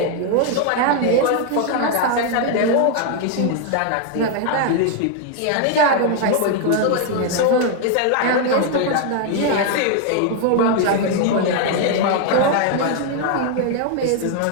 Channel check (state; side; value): different; both; correlation 0.00